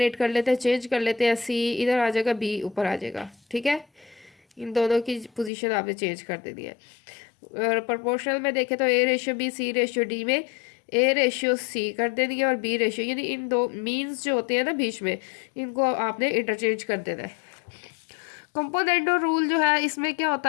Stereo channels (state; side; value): drops out; right; at 5.5 s